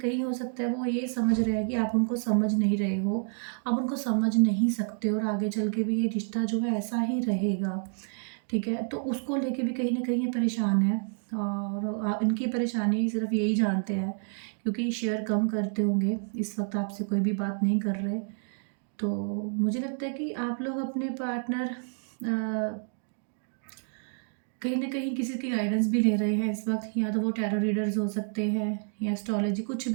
हो सकता है वो ये समझ रहे हैं कि आप उनको समझ नहीं रहे हो, आप उनको समझ नहीं सकते, और आगे चल के भी ये रिश्ता जो है ऐसा ही रहेगा, ठीक है? तो उसको लेके भी कहीं न कहीं ये परेशान हैं, और इनकी परेशानी सिर्फ़ यही जानते हैं, क्योंकि शेयर कम करते होंगे, इस वक़्त आपसे कोई भी बात नहीं कर रहे। तो मुझे लगता है कि आप लोग अपने पार्टनर कहीं न कहीं किसी की गाइडेंस भी ले रहे हैं इस वक़्त, या तो वो टैरो रीडर्स हो सकते हैं, या एस्ट्रोलॉजी, कुछ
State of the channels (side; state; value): left; silent; 59 dB below the other